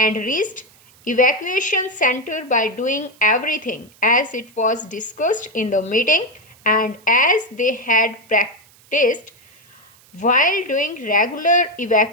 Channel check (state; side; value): noise; right; hiss, 28 dB below the sound